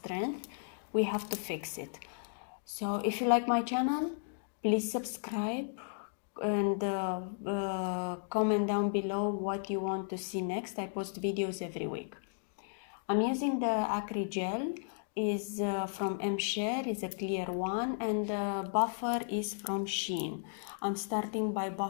We have to fix it. So if you like my channel, please subscribe and comment down below what you want to see next. I post videos every week. I'm using the Acrygel, is from MShare, is a clear one, and the buffer is from Shein. I'm starting by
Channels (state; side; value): silent; right; digital silence